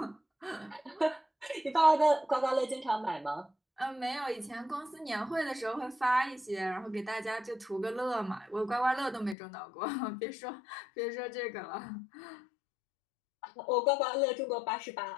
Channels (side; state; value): right; drops out; at 9.3 s